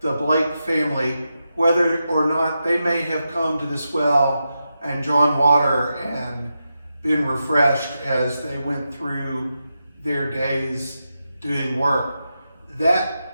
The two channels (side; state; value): both; inverted; correlation -0.88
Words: the Blake family, whether or not they may have come to this well and drawn water and been refreshed as they went through their days doing work.